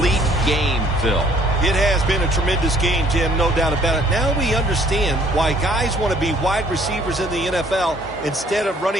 game, Phil. It has been a tremendous game, Jim, no doubt about it. Now we understand why guys want to be wide receivers in the NFL instead of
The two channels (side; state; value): both; normal; correlation 0.60